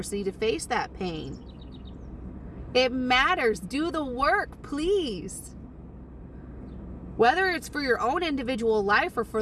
to face that pain. It matters. Do the work, please. Whether it's for your own individual life or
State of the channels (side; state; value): both; identical; correlation 1.00